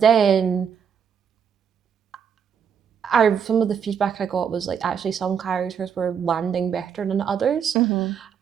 then some of the feedback I got was like actually some characters were landing better than others.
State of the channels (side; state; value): left; quieter; 7.4 dB